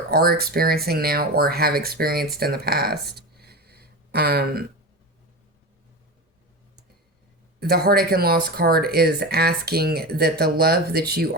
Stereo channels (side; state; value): both; normal; correlation 0.24